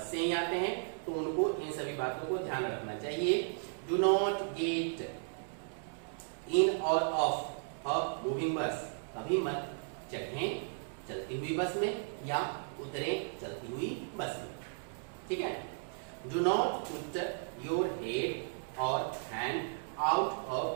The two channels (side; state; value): left; silent; digital silence